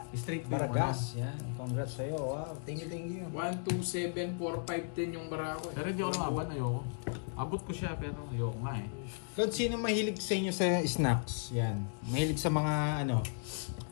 Straight Baragas, yan. Congrats sa'yo. Wow, thank you. 1, 2, 7, 4, 5, 10 yung barako. Pero hindi ako lumaban. Ayoko. Abot ko siya pero ayoko nga eh. Claude, sino mahilig sa inyo sa snacks? Yan. Mahilig sa mga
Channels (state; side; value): silent; right; digital silence